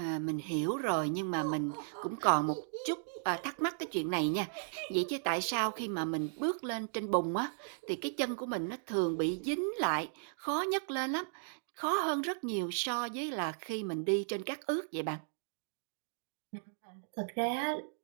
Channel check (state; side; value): silent; left; digital silence